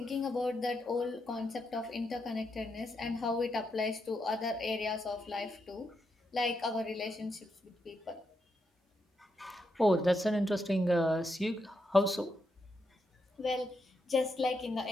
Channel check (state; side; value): normal; both; correlation 0.82